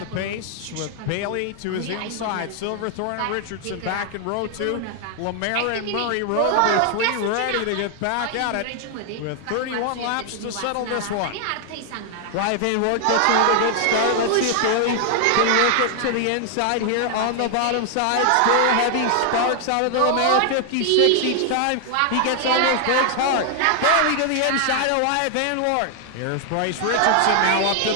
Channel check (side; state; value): both; different; correlation 0.00